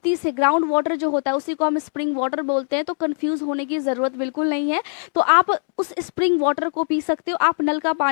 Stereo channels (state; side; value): silent; right; 65 dB below the other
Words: से ग्राउंड वाटर जो होता है उसी को हम स्प्रिंग वाटर बोलते हैं, तो कंफ्यूज होने की ज़रूरत बिल्कुल नहीं है। तो आप उस स्प्रिंग वाटर को पी सकते हो, आप नल का